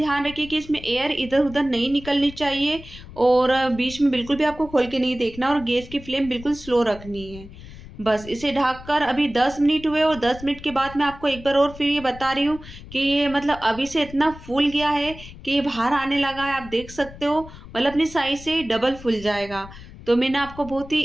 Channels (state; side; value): noise; left; rumble, 16 dB below the sound